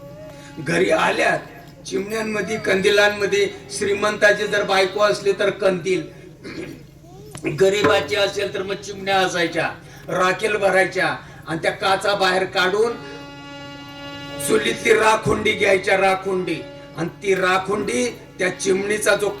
घरी आल्या चिमण्यांमध्ये, कंदिलांमध्ये श्रीमंताची जर बायको असली तर कंदील, गरीबाची असेल तर मग चिमण्या असायच्या, राखेल भरायच्या आणि त्या काचा बाहेर काढून चुलीतली राखुंडी घ्यायच्या, राखुंडी, आणि ती राखुंडी त्या चिमणीचा जो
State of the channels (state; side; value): identical; both; correlation 1.00